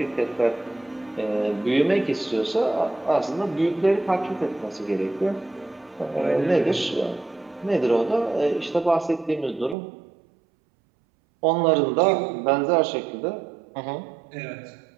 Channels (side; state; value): left; drops out; at 9.8 s